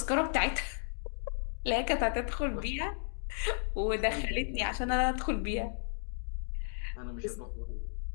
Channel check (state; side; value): silent; right; digital silence